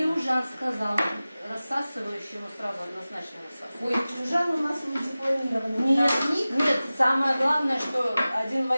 сказал, рассасывающему сразу однозначно рассасывать. Ой, чужан у нас не дипломированный. Нет, нет, самое главное, что один в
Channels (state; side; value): inverted; both; correlation -0.97